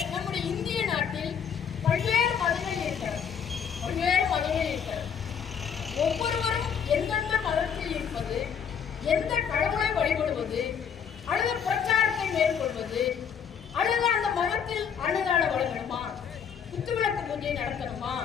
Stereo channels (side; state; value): right; quieter; 7.5 dB